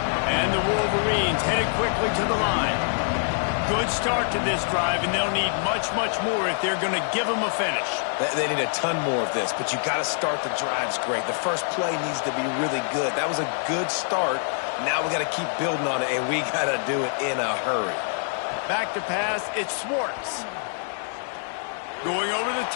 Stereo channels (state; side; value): silent; right; 62 dB below the other